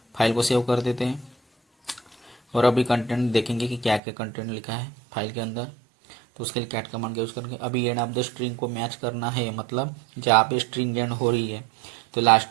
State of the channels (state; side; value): drops out; left; at 4.0 s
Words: फाइल को सेव कर देते हैं। और अभी कंटेंट देखेंगे कि क्या क्या कंटेंट लिखा है फाइल के अंदर। तो उसके लिए कैट कमांड का यूज़ करेंगे। अभी एंड ऑफ द स्ट्रिंग को मैच करना है, मतलब जहाँ पे स्ट्रिंग एंड हो रही है तो लास्ट